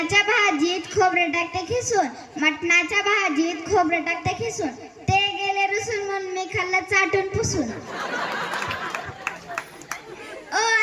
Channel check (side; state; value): both; identical; correlation 1.00